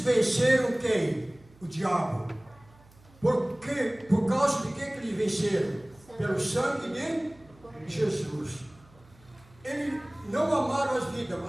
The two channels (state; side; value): noise; right; hum, 27 dB below the sound